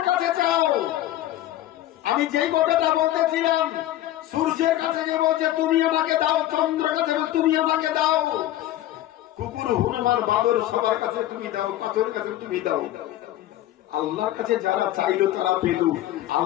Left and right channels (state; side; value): quieter; right; 14.1 dB